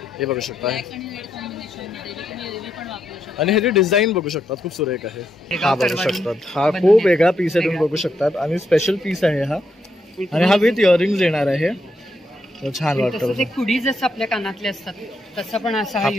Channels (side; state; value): both; normal; correlation 0.80